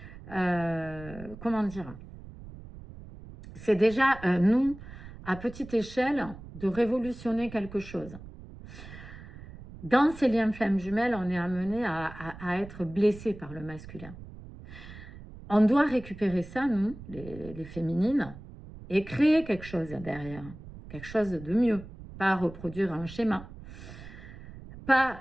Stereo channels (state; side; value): noise; right; rumble, 15 dB below the sound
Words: comment dire, c'est déjà, nous, à petite échelle, de révolutionner quelque chose. Dans ces liens flammes jumelles, on est amené à être blessé par le masculin. On doit récupérer ça, nous, les féminines, et créer quelque chose derrière, quelque chose de mieux, pas reproduire un schéma. Pas